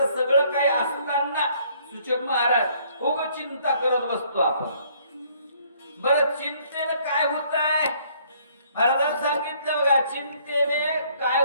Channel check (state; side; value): inverted; both; correlation -0.63